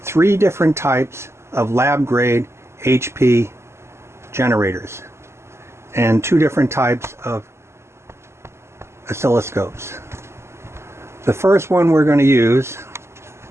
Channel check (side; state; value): left; late; 0.13 ms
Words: 3 different types of lab-grade HP generators and 2 different types of oscilloscopes. The first one we're going to use,